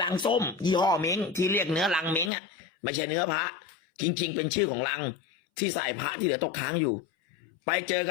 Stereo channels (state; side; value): drops out; right; at 2.3 s